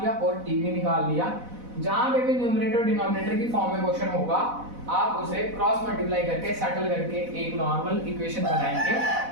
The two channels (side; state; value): left; late; 4.0 ms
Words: और t भी निकाल लिया। जहां पे भी न्यूमरेटर डिनोमिनेटर की फॉर्म में क्वेश्चन होगा, आप उसे क्रॉस मल्टीप्लाई करके सेटल करके एक नॉर्मल इक्वेशन बनाएंगे।